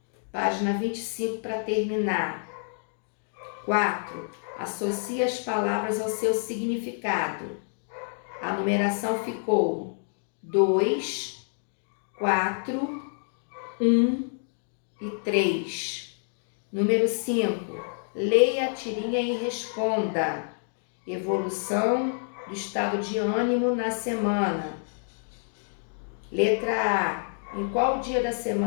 Página 25 para terminar. 4. Associe as palavras ao seu significado. A numeração ficou 2, 4, 1 e 3. Número 5. Leia a tirinha e responda. Evolução do estado de ânimo na semana. Letra A. Em qual dia da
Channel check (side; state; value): right; silent; digital silence